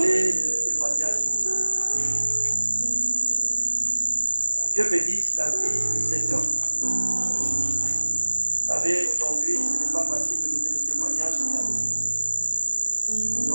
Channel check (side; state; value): both; inverted; correlation -1.00